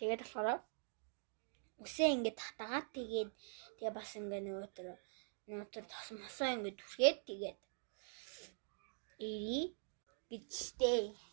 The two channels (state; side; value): silent; left; digital silence